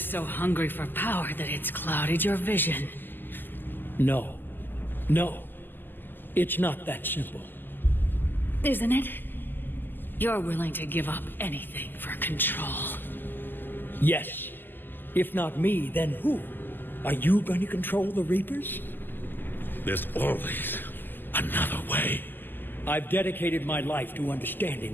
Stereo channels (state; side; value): late; right; 0.095 ms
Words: so hungry for power that it's clouded your vision. No. No. It's not that simple. Isn't it? You're willing to give up anything for control. Yes. If not me, then who? Are you going to control the Reapers? There's always another way. I've dedicated my life to